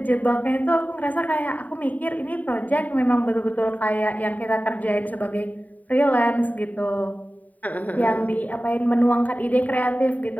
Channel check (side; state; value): right; late; 0.074 ms